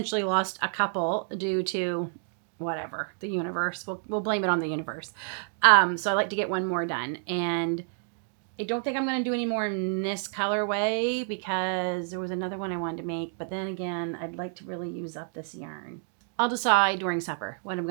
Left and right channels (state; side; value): silent; left; 59 dB below the other